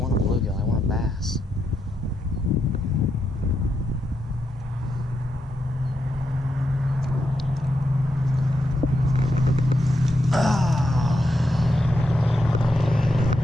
want a bluegill, I want a bass.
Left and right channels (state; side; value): normal; both; correlation 0.83